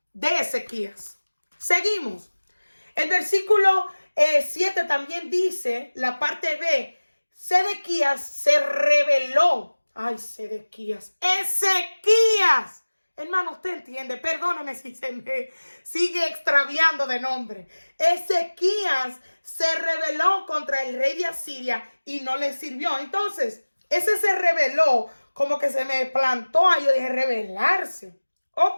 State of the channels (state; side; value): inverted; both; correlation -1.00